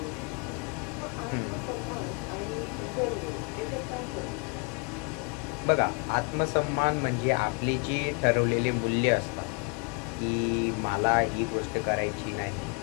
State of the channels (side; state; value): right; quieter; 35.4 dB